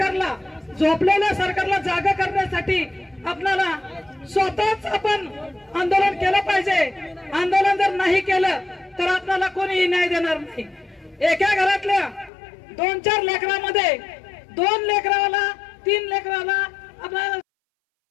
झोपलेल्या सरकारला जागा करण्यासाठी आपल्याला स्वतःच आपण आंदोलन केलं पाहिजे। आंदोलन जर नाही केलं तर आपल्याला कोणीही न्याय देणार नाही। एका घरातल्या 2-4 लेकरांमध्ये 2 लेकराला 3 लेकराला आपल्याला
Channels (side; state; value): right; drops out; at 12.3 s